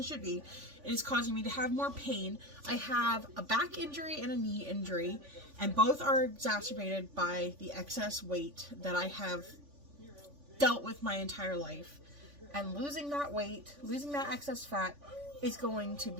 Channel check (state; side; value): late; left; 3.5 ms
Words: should be. It is causing me to have more pain. I have a back injury and a knee injury, and both are exacerbated by the excess weight that I have dealt with my entire life. And losing that weight, losing that excess fat is going to